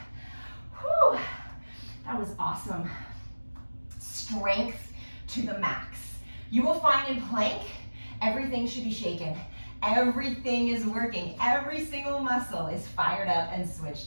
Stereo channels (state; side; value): inverted; both; correlation -1.00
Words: Whew. That was awesome. Strength to the max. You will find in plank, everything should be shaken. Everything is working. Every single muscle is fired up and